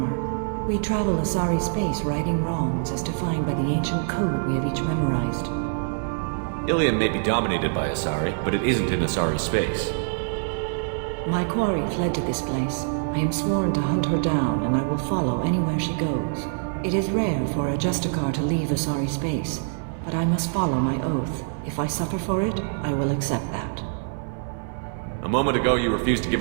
We travel Asari space righting wrongs as defined by the ancient code we have each memorized. Ilium may be dominated by Asari, but it isn't in Asari space. My quarry fled to this place. I am sworn to hunt her down, and I will follow anywhere she goes. It is rare for a Justicar to leave Asari space, but I must follow my oath. If I suffer for it, I will accept that. A moment ago you refused to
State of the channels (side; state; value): left; silent; 62 dB below the other